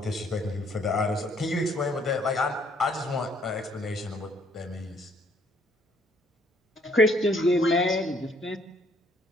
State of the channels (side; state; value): both; normal; correlation 0.65